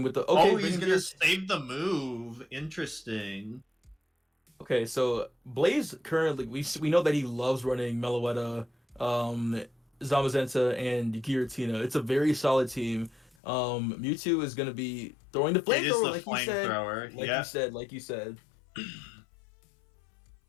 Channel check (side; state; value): right; drops out; at 13.3 s